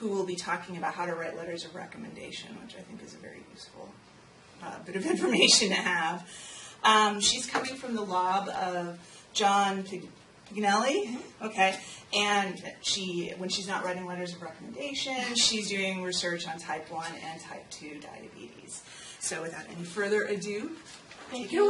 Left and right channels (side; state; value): both; identical; correlation 1.00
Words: will be talking about how to write letters of recommendation, which I think is a very useful bit of information to have. She's coming from the lab of John Pignelli, okay, and when she's not writing letters of recommendation, she's doing research on type 1 and type 2 diabetes. So without any further ado, take it